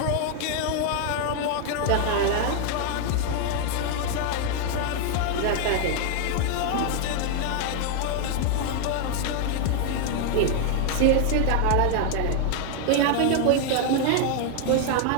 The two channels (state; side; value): different; both; correlation 0.00